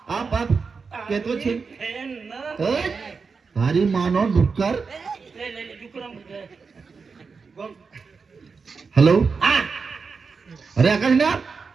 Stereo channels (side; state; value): left; quieter; 5.0 dB